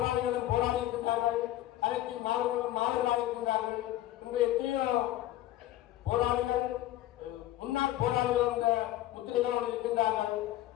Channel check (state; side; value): quieter; right; 14.3 dB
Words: போராடி இருக்கின்றார்கள், அனைத்து மாணவர்களும் மாணவர்களாக இருக்கின்றார்கள். இங்கு எத்தனையோ போராளிகள் முன்னாள் போராளிகள் என்ற முத்திரைகளோடு இருக்கின்றார்கள்.